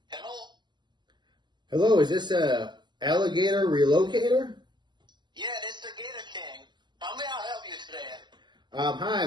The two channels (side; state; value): left; late; 0.21 ms